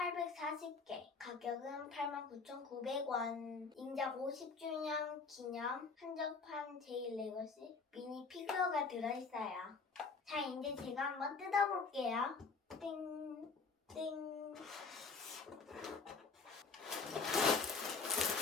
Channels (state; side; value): quieter; right; 4.7 dB